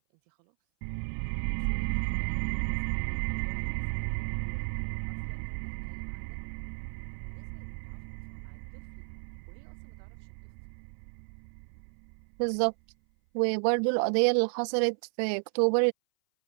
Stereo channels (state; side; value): silent; left; 56 dB below the other